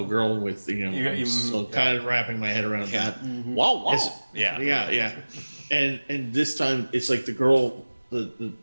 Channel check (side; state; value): both; inverted; correlation -1.00